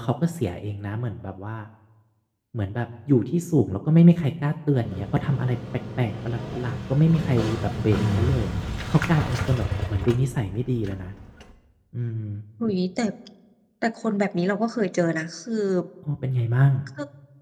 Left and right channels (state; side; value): identical; both; correlation 1.00